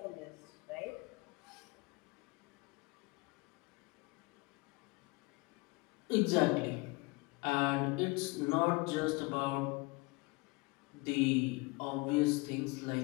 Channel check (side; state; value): right; quieter; 25.7 dB